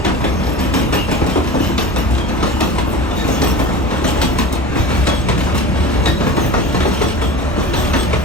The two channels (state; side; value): normal; both; correlation 0.33